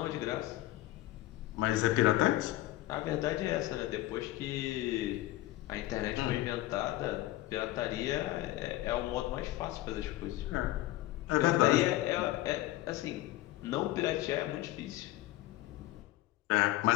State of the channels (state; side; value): quieter; right; 16.7 dB